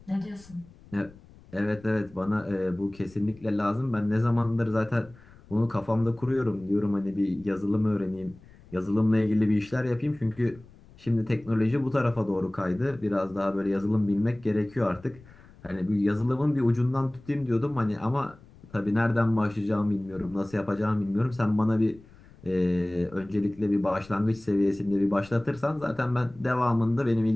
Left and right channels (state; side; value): noise; left; rumble, 24 dB below the sound